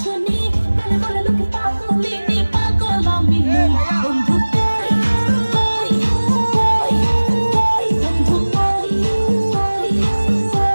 বলে বলে লোকে পাগলিনী পাগল আমি নই বন্ধু কই কই কই কই বন্ধু কই কই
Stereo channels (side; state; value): both; inverted; correlation -1.00